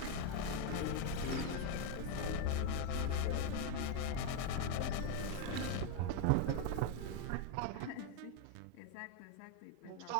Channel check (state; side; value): different; both; correlation 0.01